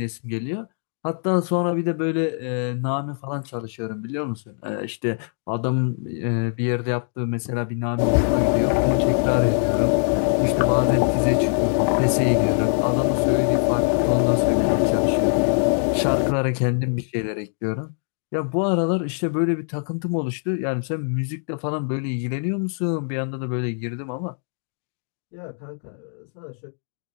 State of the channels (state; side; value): silent; right; digital silence